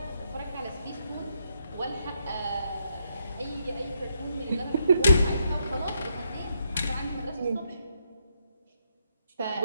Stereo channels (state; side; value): inverted; both; correlation -0.77